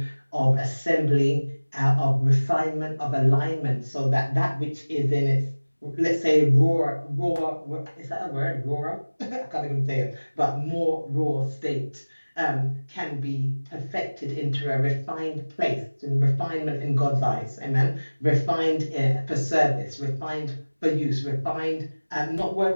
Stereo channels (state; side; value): inverted; both; correlation -1.00